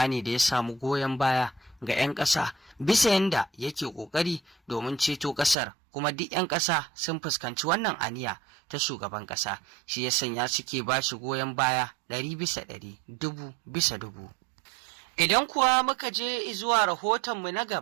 ne da ya samu goyon baya ga 'yan ƙasa bisa yanda yake ƙoƙari domin ceto ƙasar, kuma duk 'yan ƙasa sun fuskanci wannan aniya ta shugaban ƙasa, shi ya sanya suke ba shi goyon baya 100%, 1000%. Idan kuwa muka je zuwa rahotonmu na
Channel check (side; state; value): left; drops out; at 5.6 s